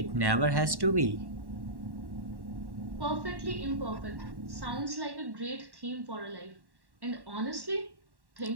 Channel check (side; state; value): left; late; 1.1 ms